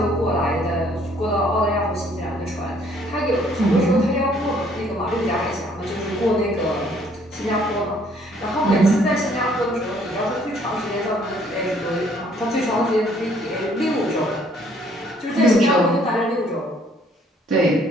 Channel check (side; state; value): both; normal; correlation 0.63